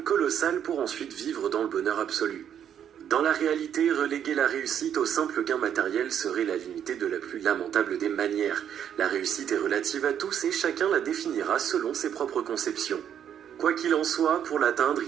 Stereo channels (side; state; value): left; quieter; 9.2 dB